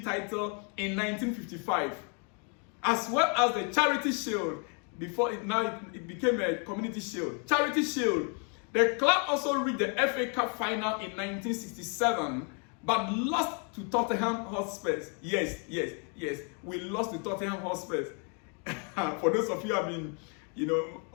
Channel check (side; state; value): right; quieter; 38.5 dB